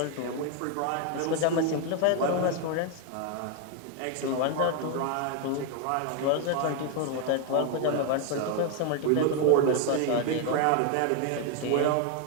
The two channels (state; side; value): different; both; correlation 0.01